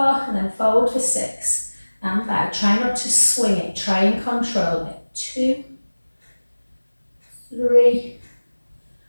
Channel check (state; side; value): inverted; both; correlation -1.00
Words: And then forward for 6. And back. Try not to swing it. Try and control it. 2, 3,